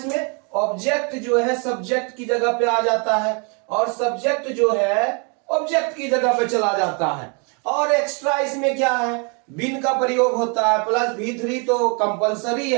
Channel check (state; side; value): quieter; left; 35.6 dB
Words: में, ऑब्जेक्ट जो है सब्जेक्ट की जगह पे आ जाता है और सब्जेक्ट जो है ऑब्जेक्ट की जगह पे चला जाता है। और एक्स्ट्रा इसमें क्या है, बिन का प्रयोग होता है प्लस V3 तो कंपलसरी